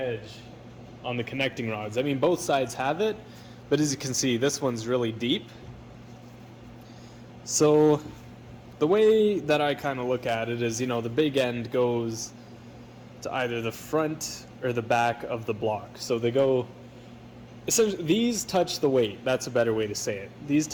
on the connecting rods. I mean, both sides have it, but as you can see, this one's really deep. So the way that I kind of look at it is, the big end goes to either the front or the back of the block. So they go, essentially, these touch the weight. That's a better way to say it. These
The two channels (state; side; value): identical; both; correlation 1.00